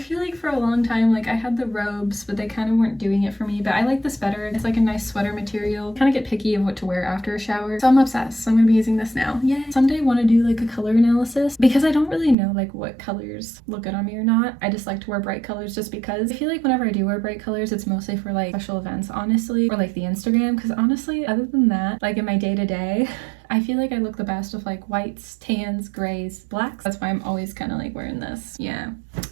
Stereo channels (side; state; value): left; drops out; at 12.4 s